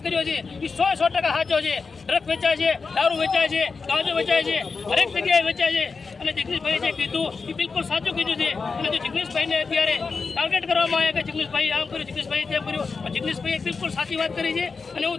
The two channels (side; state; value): right; quieter; 4.7 dB